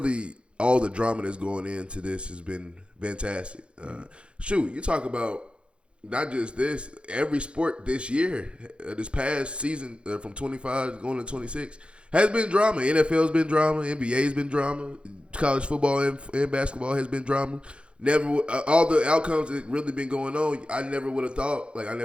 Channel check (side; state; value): left; late; 0.057 ms